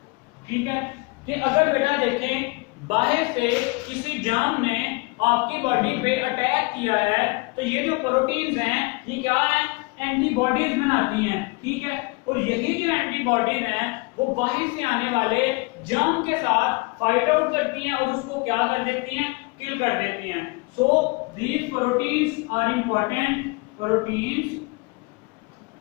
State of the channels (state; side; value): quieter; right; 26.9 dB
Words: ठीक है, कि अगर बेटा देखें बाहर से किसी जाम ने आपकी बॉडी पे अटैक किया है तो ये जो प्रोटीन्स हैं ये क्या है एंटीबॉडीज बनाती हैं। ठीक है, और यही जो एंटीबॉडीज हैं वो बाहर से आने वाले जाम के साथ फाइट आउट करती हैं और उसको क्या कर देती हैं, किल कर देती हैं। So these proteins are important, proteins